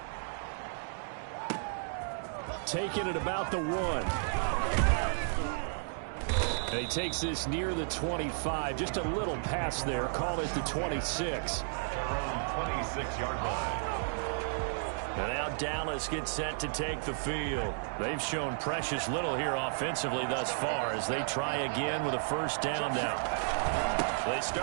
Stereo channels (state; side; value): silent; left; digital silence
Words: Taking it about the 1. And he takes this near the 25. Just a little pass there. Called it the 26. From 26-yard line. And now Dallas gets set to take the field. They've shown precious little here offensively thus far as they try again with a first down now. They